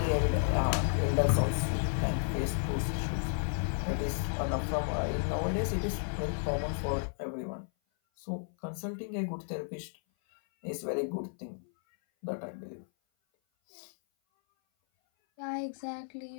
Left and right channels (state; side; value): silent; right; 56 dB below the other